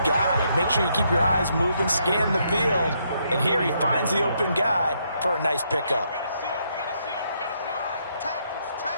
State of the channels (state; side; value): inverted; both; correlation -0.75